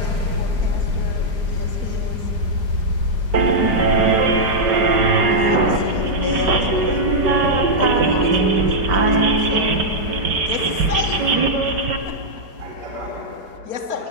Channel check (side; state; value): left; late; 4.9 ms